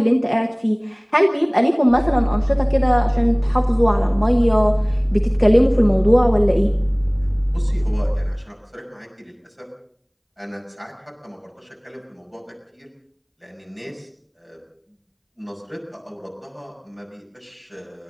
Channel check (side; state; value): both; identical; correlation 1.00